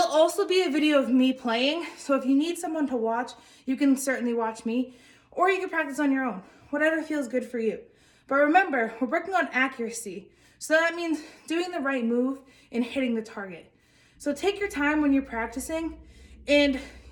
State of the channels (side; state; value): both; identical; correlation 1.00